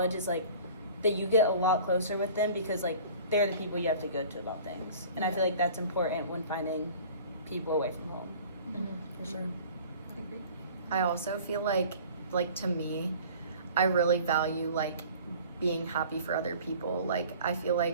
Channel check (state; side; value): inverted; both; correlation -0.45